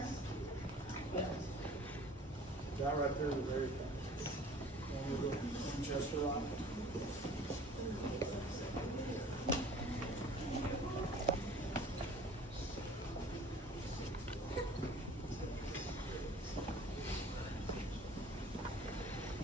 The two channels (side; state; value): both; normal; correlation 0.48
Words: quilt. That right there is very fast. One little Winchester rifle.